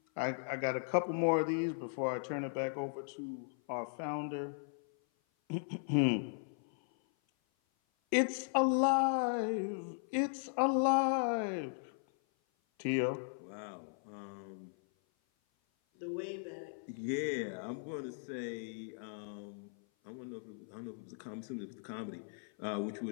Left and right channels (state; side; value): silent; right; 53 dB below the other